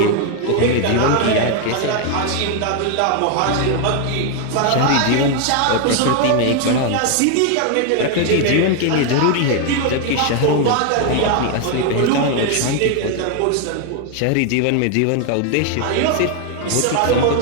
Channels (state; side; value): different; both; correlation 0.01